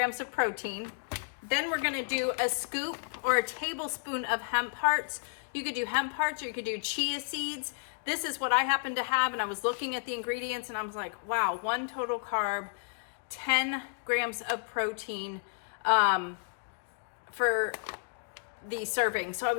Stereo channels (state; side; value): silent; right; digital silence